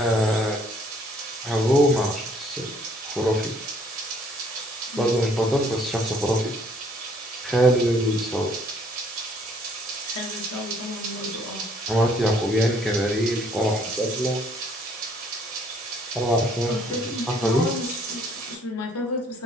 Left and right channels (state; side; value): normal; both; correlation 0.62